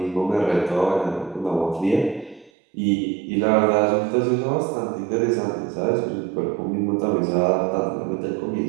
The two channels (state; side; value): drops out; left; at 2.5 s